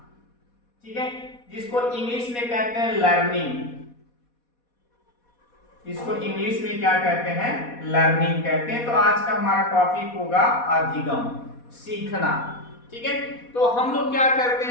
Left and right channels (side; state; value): right; late; 4.2 ms